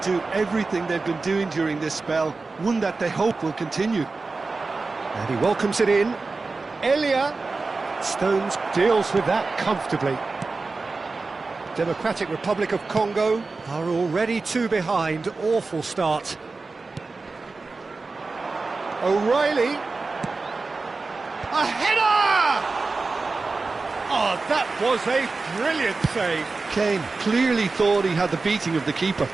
everything they've been doing during this spell, one that they hope will continue. And he welcomes it in. Elia. Stones deals with that comfortably. Democratic Republic of Congo are already 2 behind. Awful start. O'Reilly. A header! Oh, that was a brilliant save. Kane clearly thought he had the beating of the keeper.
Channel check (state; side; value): quieter; left; 3.9 dB